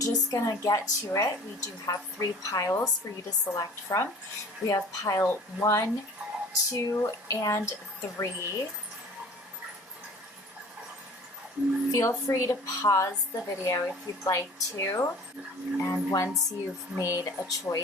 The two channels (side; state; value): both; normal; correlation 0.46